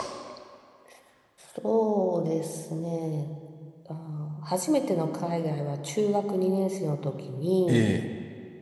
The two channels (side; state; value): both; identical; correlation 1.00